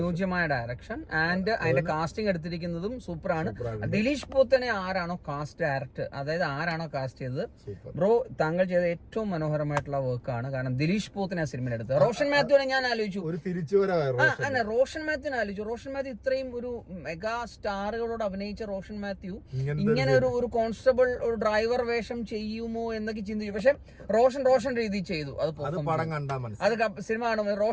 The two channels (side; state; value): both; identical; correlation 1.00